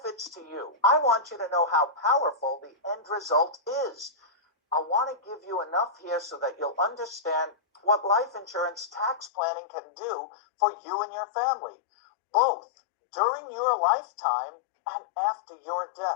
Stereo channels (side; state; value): right; drops out; at 9.3 s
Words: to you. I want you to know how powerful the end result is. I want to give you enough here so that you'll understand what life insurance tax planning can do for you and your family, both during your lifetime and after your